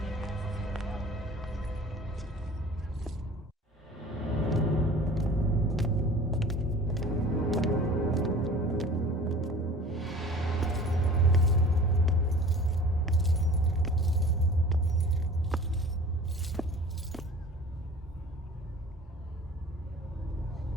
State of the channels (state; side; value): normal; both; correlation 0.43